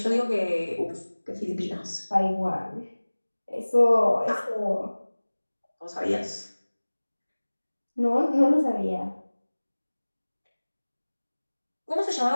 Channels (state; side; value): inverted; both; correlation -1.00